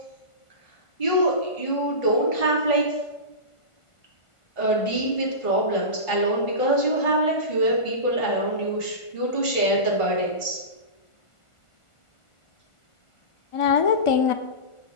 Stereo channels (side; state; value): right; late; 1.4 ms